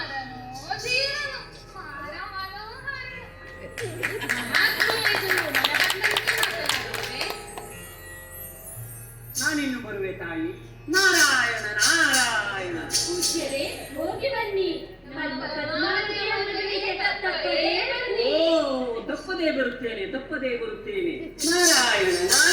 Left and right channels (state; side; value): identical; both; correlation 1.00